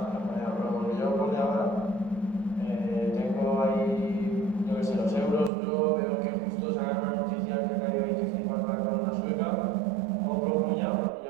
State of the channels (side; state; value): left; drops out; at 5.5 s